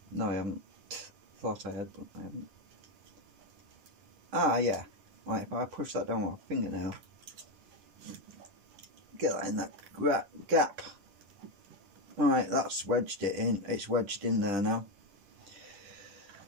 No, I haven't. Thought I had, but I haven't. Ah, yeah. Right, if I push that down with my fingernail, get that in that gap. Alright, that's wedged it in. It's wedged in there now.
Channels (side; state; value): left; late; 10 ms